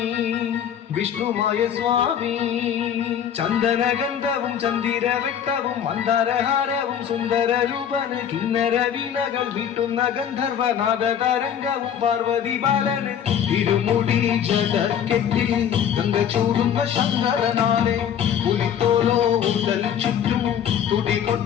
വിഷ്ണുമായ സ്വാമി ചന്ദനഗന്ധവും ചന്ദിരവെട്ടവും മന്ദാരഹാരവും സുന്ദര രൂപന് കിന്നര വീണകൾ വീട്ടുന്ന ഗന്ധർവനാഥ തരംഗവും പാർവതി ബാലന് ഇരുമുടി ജടക്കെട്ടിൽ ഗന്ധ ചൂടുന്ന ശങ്കരനാരെ പുലിത്തോലോ ഉടൽ ചുറ്റും തുടി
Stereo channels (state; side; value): quieter; right; 8.9 dB